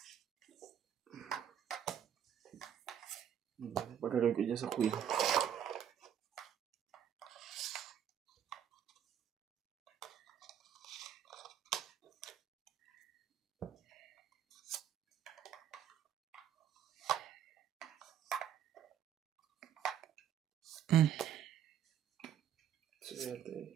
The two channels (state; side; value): quieter; left; 9.6 dB